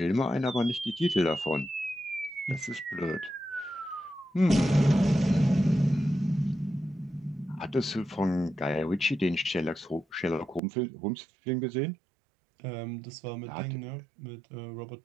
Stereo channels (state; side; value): drops out; left; at 10.6 s